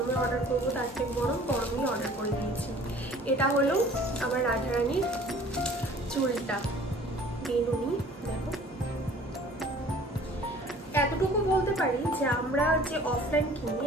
অর্ডার করবো, তার থেকে গরমেই অর্ডার করে দিয়েছি। এটা হলো আমার রাধারানীর চুলটা, বেনুনি। দেখো, এতটুকু বলতে পারি যে আমরা যে অফলাইন কিনি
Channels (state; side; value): normal; both; correlation 0.50